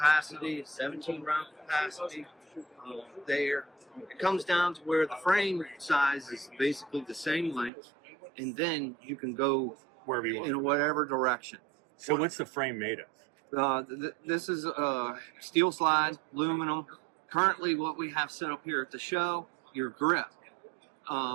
a 17-round capacity. There, it comes down to where the frame size is basically the same length, and then you can go Wherever you want. in whatever direction. So what's the frame made of? This is steel slide, aluminum. Currently, what we have set up here at the show, your grip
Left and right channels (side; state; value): left; drops out; at 7.7 s